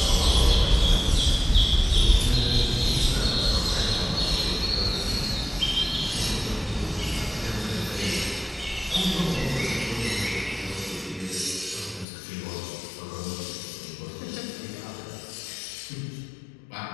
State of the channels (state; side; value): drops out; right; at 12.1 s